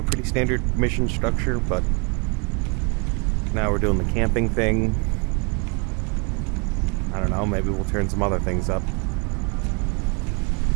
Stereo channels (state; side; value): quieter; left; 33.5 dB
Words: pretty standard mission structure, but now we're doing the camping thing. I don't know, maybe we'll turn some other things up.